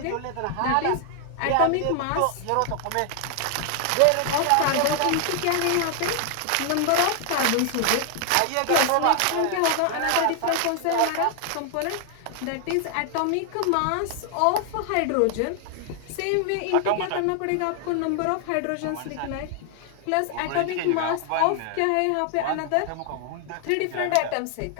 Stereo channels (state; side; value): different; both; correlation 0.00